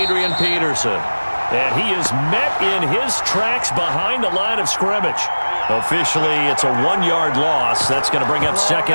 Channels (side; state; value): both; inverted; correlation -1.00